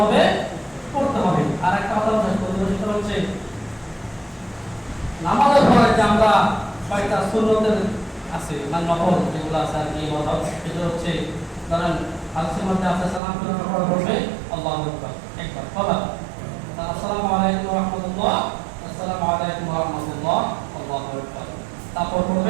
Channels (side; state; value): left; drops out; at 13.2 s